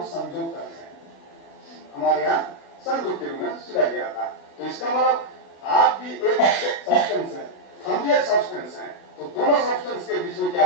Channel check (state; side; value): late; right; 36 ms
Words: संयोग करते हैं। हमारे यहाँ संयोग के रूप में सुना गया था। तो इसका मतलब आप भी एक सब्सटेंस है, हम भी एक सब्सटेंस हैं, तो दोनों सब्सटेंस के बीच में